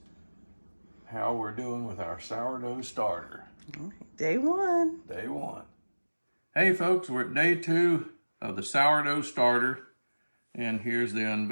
how we're doing with our sourdough starter. Day one. Day one. Hey folks, we're at day two of the sourdough starter, and here's the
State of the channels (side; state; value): both; inverted; correlation -1.00